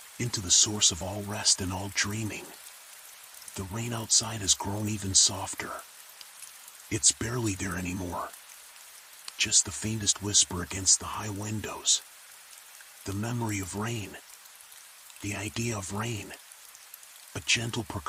Into the source of all rest and all dreaming. The rain outside has grown even softer. It's barely there anymore. Just the faintest whisper against the high windows. The memory of rain. The idea of rain. A gentle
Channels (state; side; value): identical; both; correlation 1.00